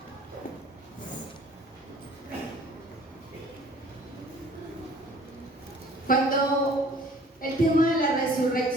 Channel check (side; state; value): both; normal; correlation 0.52